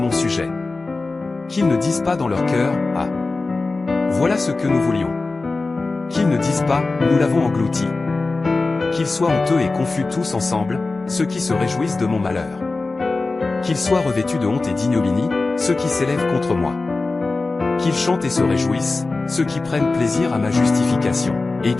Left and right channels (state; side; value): quieter; right; 3.6 dB